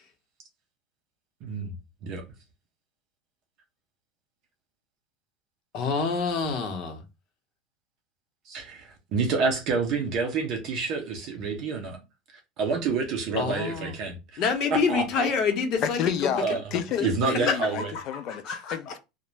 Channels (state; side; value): normal; both; correlation 0.33